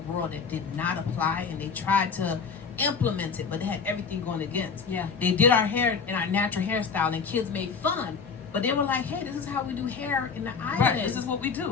that did not apply, and they tried to implement it, but they had everything going against. Yeah. They did our hair in our natural hairstyle, and kids made fun. But they were like, "Hey, this is how we do hair in the islands. Right, this is what we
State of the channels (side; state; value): right; quieter; 5.7 dB